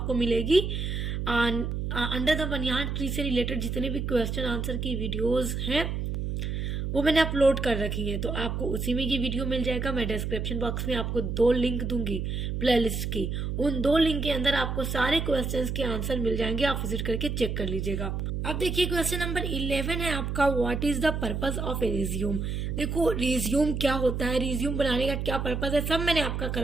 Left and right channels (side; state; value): right; noise; hum, 2 dB below the sound